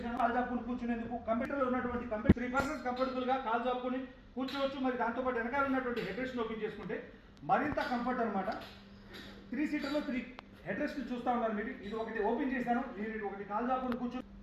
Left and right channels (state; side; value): identical; both; correlation 1.00